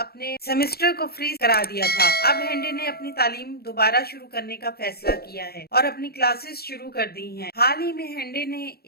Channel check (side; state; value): right; late; 0.46 ms